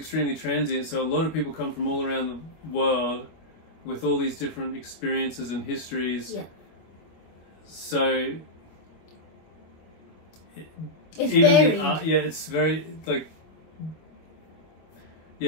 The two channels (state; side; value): late; right; 25 ms